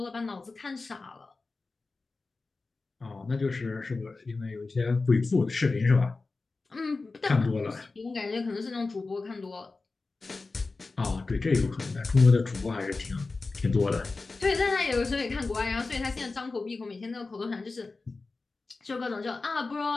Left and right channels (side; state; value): right; quieter; 3.8 dB